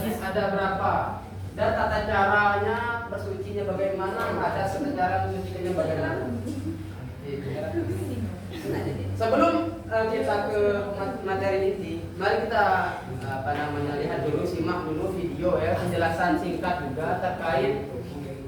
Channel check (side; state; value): both; identical; correlation 1.00